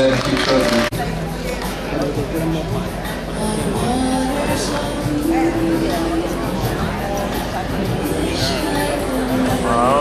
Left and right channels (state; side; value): identical; both; correlation 1.00